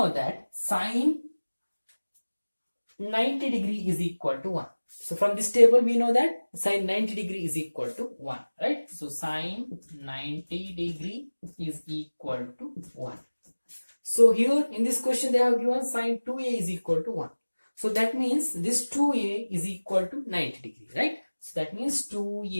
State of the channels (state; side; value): inverted; both; correlation -1.00